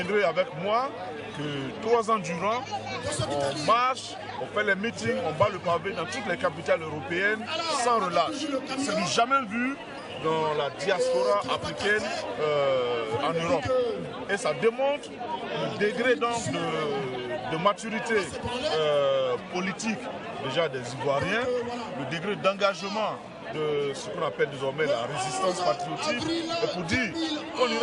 avec moi que 3 ans durant, on marche, on fait les meetings, on bat le pavé dans toutes les capitales européennes sans relâche. C'est du jamais vu dans la diaspora africaine en Europe. Et ça démontre le degré donc de maturité politique déjà des Ivoiriens, le degré d'engagement de ce qu'on appelle désormais la résistance patriotique, et pour dire qu'on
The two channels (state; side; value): identical; both; correlation 1.00